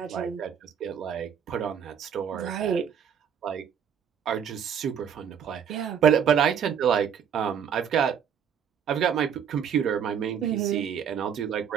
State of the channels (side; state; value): left; quieter; 8.0 dB